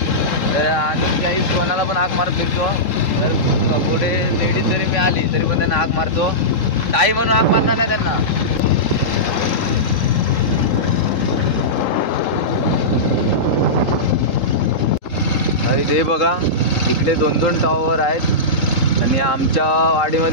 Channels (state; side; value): late; right; 3.8 ms